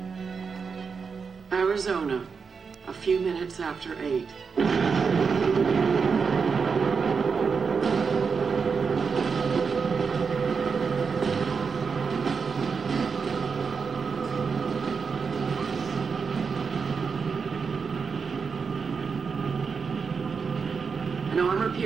Arizona, a few minutes after 8. An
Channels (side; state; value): left; quieter; 5.5 dB